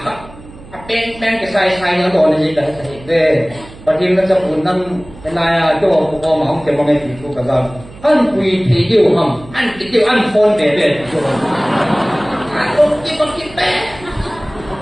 ka pen ke sai na do ne ji ka sai de patim na cha pun nan na ya jo ko ma ong ke ma ngai ti ko ka ga an kui thi diu ham an ti diu an phone de de an ko ki pe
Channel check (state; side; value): noise; right; hum, 19 dB below the sound